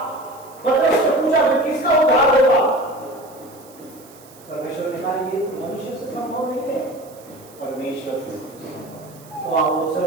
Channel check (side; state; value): right; noise; hiss, 24 dB below the sound